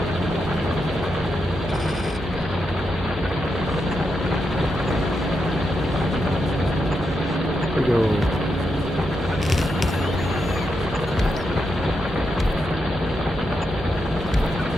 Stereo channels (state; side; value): noise; right; hum, 13 dB below the sound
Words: There we go.